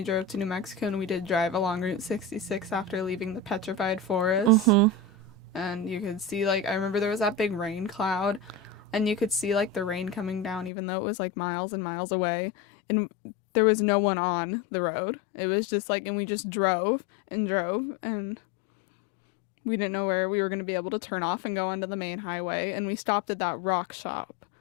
drove to New Mexico, and we did drive along Route 66 after leaving the petrified forest. Mm-hmm. And you could see, like, I remember there was that big rain cloud, and you could see, like, the rain coming down, even though it was, like, miles and miles away. And there was no one on the road. It was just, like, and we just drove, and we didn't know where we were going to be able to turn off and go onto the main highway. And we stopped at that rock shop.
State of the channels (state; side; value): drops out; right; at 10.7 s